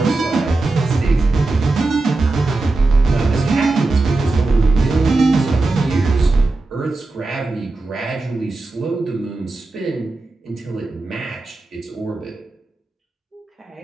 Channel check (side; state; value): left; quieter; 3.3 dB